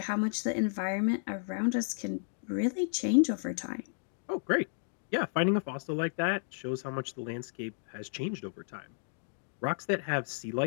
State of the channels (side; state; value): right; silent; digital silence